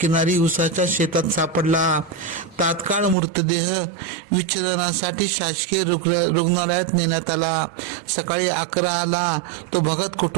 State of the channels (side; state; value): left; drops out; at 3.2 s